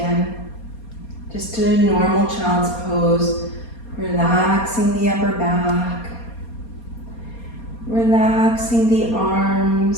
Just a normal child's pose, relaxing the upper back, relaxing the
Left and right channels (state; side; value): late; right; 4.3 ms